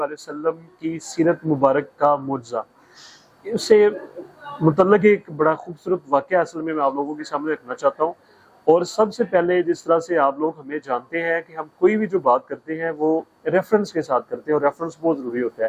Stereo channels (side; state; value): both; identical; correlation 1.00